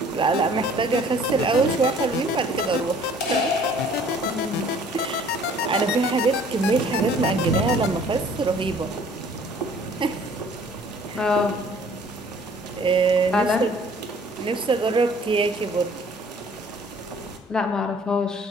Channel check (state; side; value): normal; both; correlation 0.54